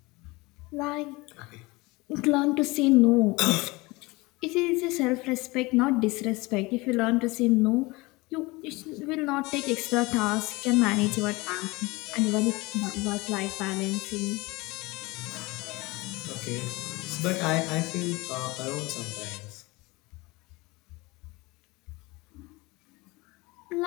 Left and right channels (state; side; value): quieter; right; 23.3 dB